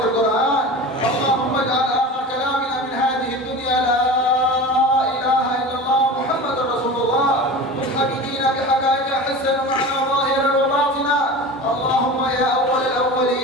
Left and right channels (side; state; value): both; normal; correlation 0.32